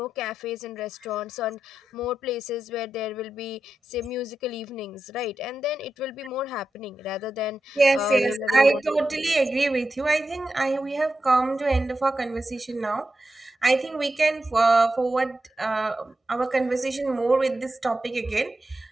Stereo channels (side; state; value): both; normal; correlation 0.90